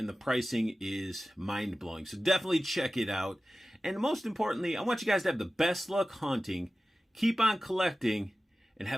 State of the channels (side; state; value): both; normal; correlation 0.95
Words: the pricing is mind-blowing. So definitely check it out. And most importantly, I want you guys to have the best luck hunting, keep on collecting, and